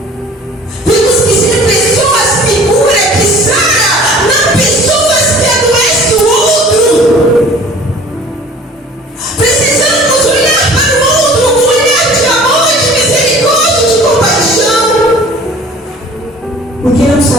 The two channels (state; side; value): normal; both; correlation 0.48